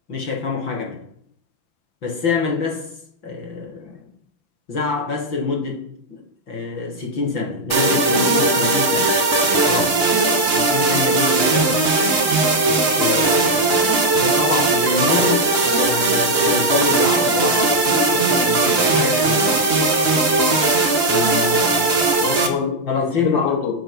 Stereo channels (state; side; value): late; right; 5.4 ms